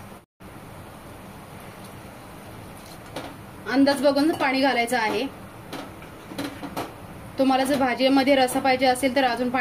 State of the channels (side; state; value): both; identical; correlation 1.00